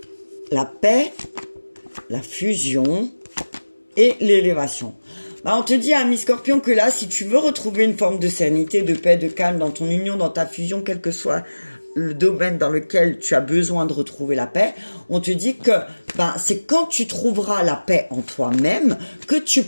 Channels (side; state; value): both; inverted; correlation -1.00